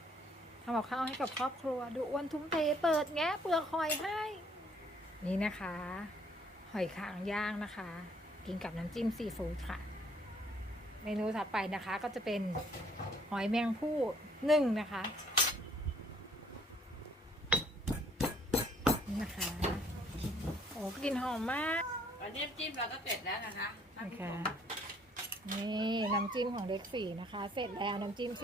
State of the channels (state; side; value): normal; both; correlation 0.62